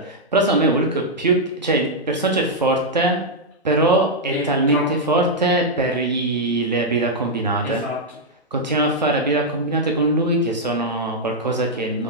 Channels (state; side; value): normal; both; correlation -0.03